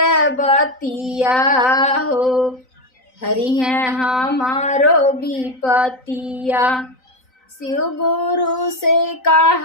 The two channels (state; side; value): late; right; 3.9 ms